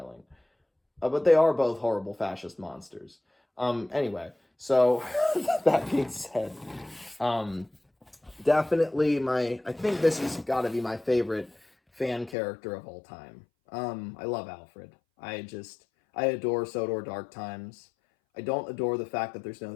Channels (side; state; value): right; drops out; at 12.4 s